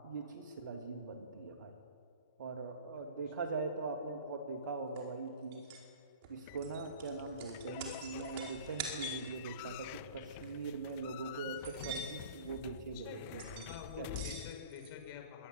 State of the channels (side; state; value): both; inverted; correlation -0.41